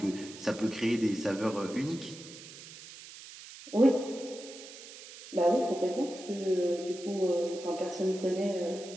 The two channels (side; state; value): right; noise; hiss, 15 dB below the sound